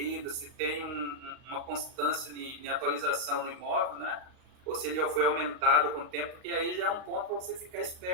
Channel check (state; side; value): late; left; 39 ms